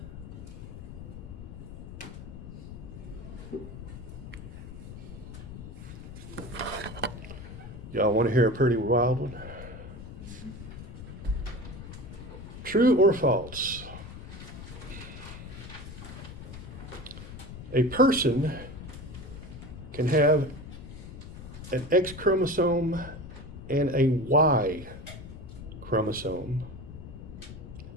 Y'all want to hear a pretty wild one? True or false? A person can have an X chromosome and a Y chromosome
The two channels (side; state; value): left; noise; rumble, 12 dB below the sound